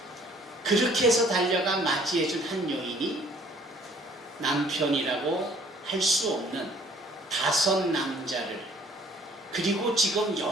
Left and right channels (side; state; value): both; normal; correlation 0.57